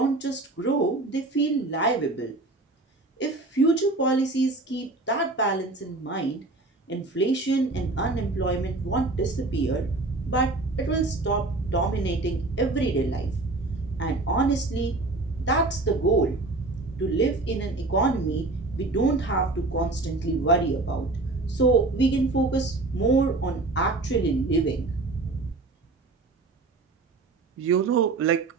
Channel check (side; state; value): left; quieter; 3.2 dB